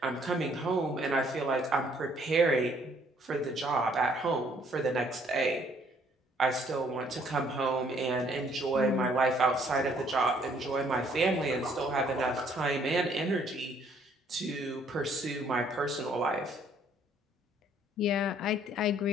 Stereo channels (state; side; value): normal; both; correlation 0.63